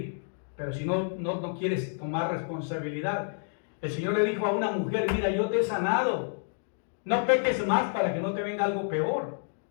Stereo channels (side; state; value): right; silent; digital silence